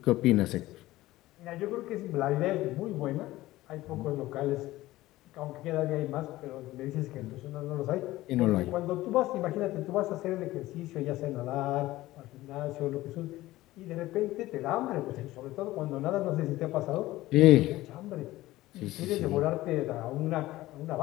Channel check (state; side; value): quieter; right; 17.0 dB